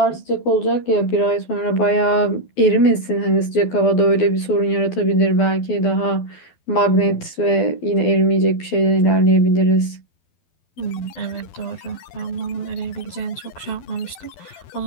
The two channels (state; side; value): late; right; 12 ms